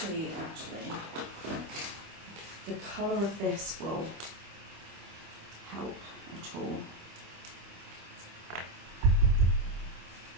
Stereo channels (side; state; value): left; late; 25 ms